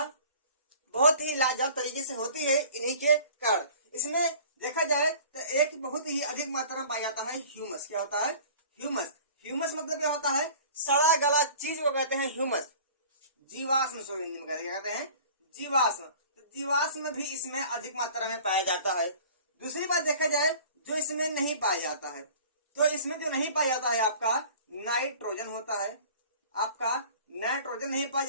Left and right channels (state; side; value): inverted; both; correlation -0.45